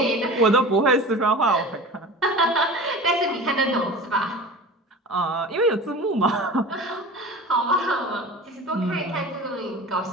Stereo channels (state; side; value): normal; both; correlation 0.36